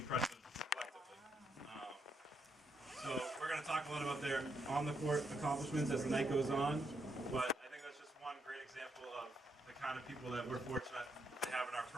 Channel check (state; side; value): normal; both; correlation 0.77